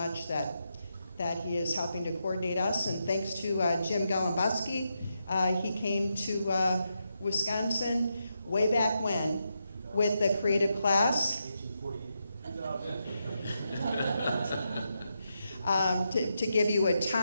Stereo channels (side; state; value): both; inverted; correlation -0.84